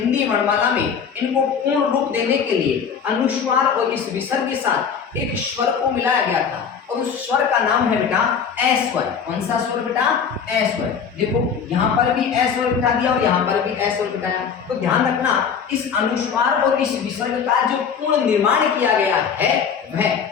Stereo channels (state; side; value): quieter; right; 6.8 dB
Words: वर्णमाला में इनको पूर्ण रूप देने के लिए अनुस्वार और इस विसर्ग के साथ एक स्वर को मिलाया गया था और उस स्वर का नाम है बेटा ए स्वर। कौन सा स्वर बेटा, ए स्वर। देखो यहाँ पर भी ए स्वर बिठा दिया और यहाँ पर भी ए स्वर बिठाया। तो ध्यान रखना, इस अनुस्वार और इस विसर्ग का जो पूर्ण निर्माण किया गया है वह